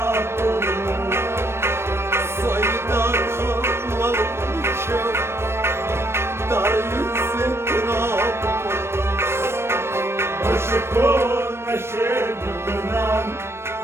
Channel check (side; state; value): left; late; 0.12 ms